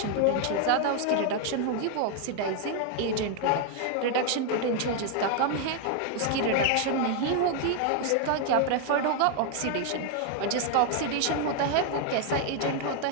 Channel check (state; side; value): different; both; correlation 0.00